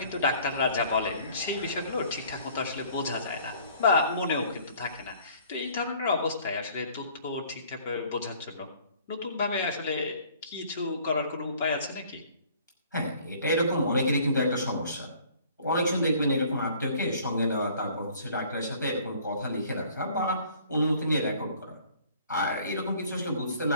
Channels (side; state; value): both; inverted; correlation -0.55